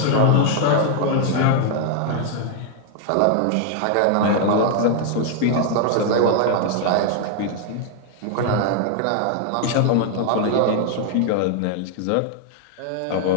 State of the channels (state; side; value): different; both; correlation 0.00